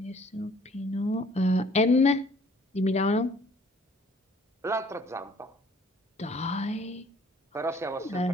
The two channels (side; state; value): both; normal; correlation 0.56